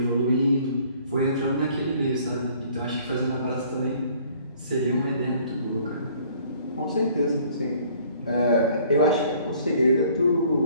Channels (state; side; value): inverted; both; correlation -0.57